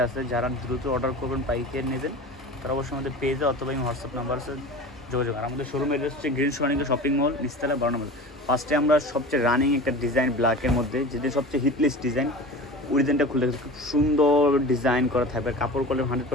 আছে। যারা দ্রুত অর্ডার করবেন, পাইকারি নেবেন, তারা অবশ্যই আমাদের পেজে অথবা হোয়াটসঅ্যাপ নাম্বার আছে যোগাযোগ। আর আমাদের শোরুম এড্রেস হচ্ছে গ্রিন সোনালিকা শপিং মল, নিচতলা 12 নম্বর। ফার্স্টে আমরা সবচেয়ে রানিং একটা ডিজাইন ব্ল্যাকের মধ্যে, যেটা সবচেয়ে হিটলিস্ট ডিজাইন, ওই ডিজাইনটা খুলে খুব সুন্দর ডিজাইন করা থাকবে। কাপড় কোয়ালিটি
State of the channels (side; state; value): both; normal; correlation 0.34